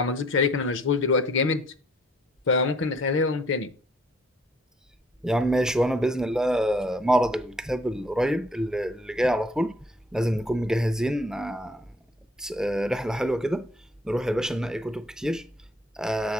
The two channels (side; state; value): both; normal; correlation 0.61